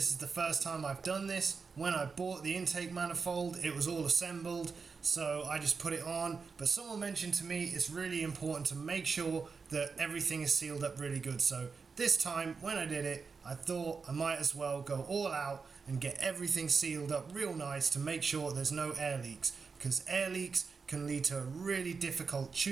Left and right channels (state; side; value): quieter; left; 5.1 dB